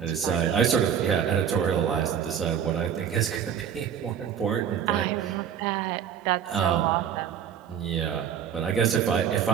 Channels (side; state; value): left; quieter; 8.5 dB